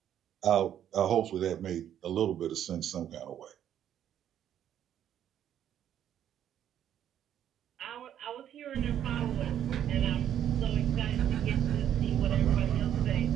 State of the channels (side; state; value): left; quieter; 10.3 dB